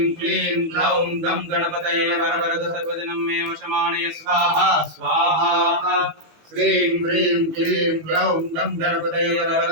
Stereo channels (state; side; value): late; left; 18 ms